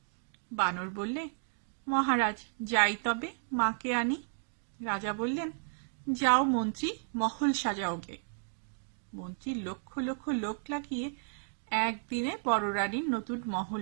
বানর বললে, মহারাজ, যাই তবে, মাকে আনি। রাজা বললেন, যাও মন্ত্রী, মহল সাজাও গে। মন্ত্রী লক্ষ লক্ষ লোক লাগিয়ে একদিনে বড় রানীর নতুন মহল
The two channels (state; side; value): silent; left; digital silence